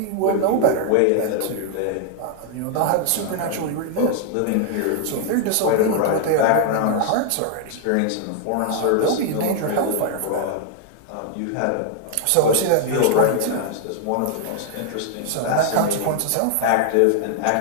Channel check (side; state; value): both; different; correlation 0.00